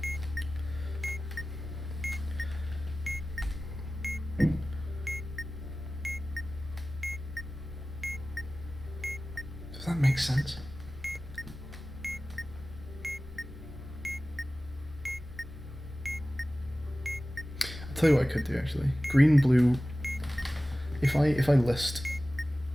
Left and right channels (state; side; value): normal; both; correlation 0.96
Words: Does that make sense? I'll tell you what I could do actually. Green, blue. If I list